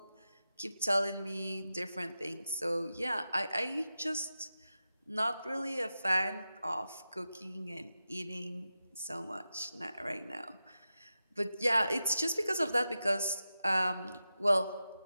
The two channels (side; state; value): both; inverted; correlation -0.91